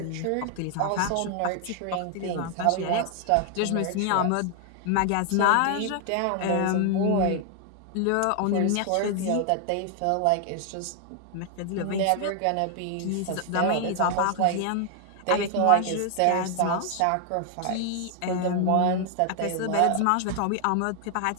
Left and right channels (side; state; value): both; different; correlation 0.00